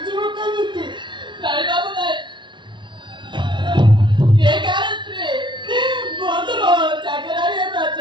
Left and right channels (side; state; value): left; late; 0.23 ms